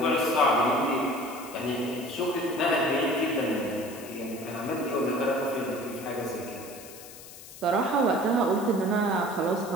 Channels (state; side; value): noise; left; hiss, 16 dB below the sound